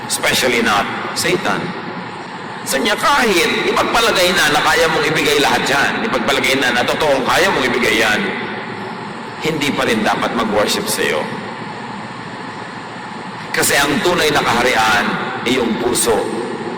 especially not Satan. Sa niya kahit ipagpalagay na kaya mong ibigay lahat yan, ipagpalagay na totoong kaya mong ibigay yan, hindi pa rin dapat mag-worship sa iyo. Kasi ang tunay na kaharian ay yung puso,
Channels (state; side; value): identical; both; correlation 1.00